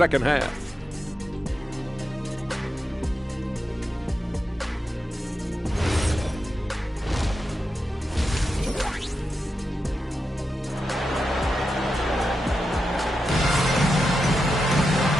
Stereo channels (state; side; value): normal; both; correlation 0.88